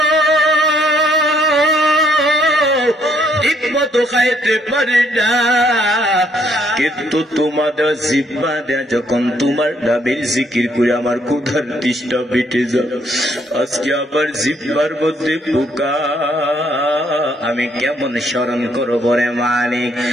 ঠিকমতো খাইতে পারি না, কিন্তু তোমাদের জিহ্বা দেয়া যখন তোমার নামের জিকির করে আমার ক্ষুধার তৃষ্ণা মিটে যায়। আজকে আবার জিহ্বার মধ্যে পোকা, আমি কেমন স্মরণ করবো রে মালিক?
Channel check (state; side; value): normal; both; correlation 0.69